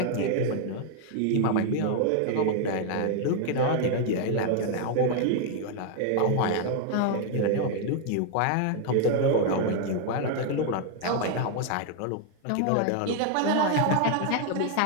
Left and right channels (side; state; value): both; different; correlation 0.00